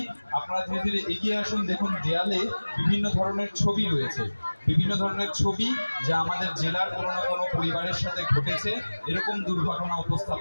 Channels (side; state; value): both; inverted; correlation -1.00